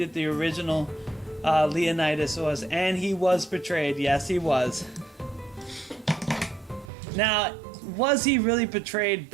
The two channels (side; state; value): left; drops out; at 6.9 s